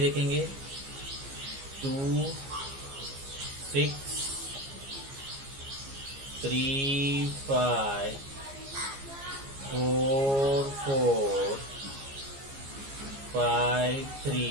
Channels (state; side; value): late; left; 15 ms